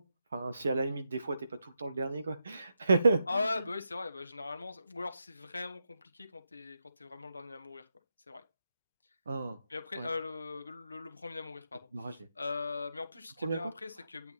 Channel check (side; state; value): both; inverted; correlation -0.85